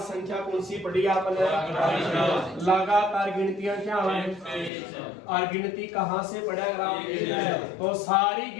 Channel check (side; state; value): right; drops out; at 4.7 s